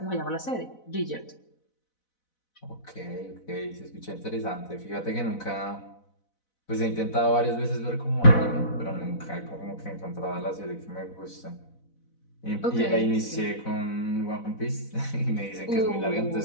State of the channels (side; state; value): right; late; 4.0 ms